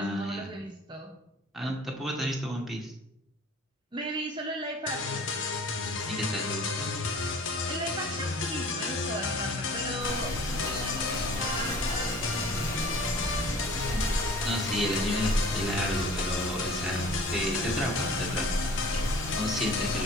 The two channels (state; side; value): normal; both; correlation 0.46